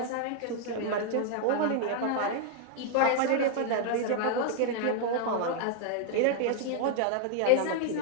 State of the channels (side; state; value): both; different; correlation 0.00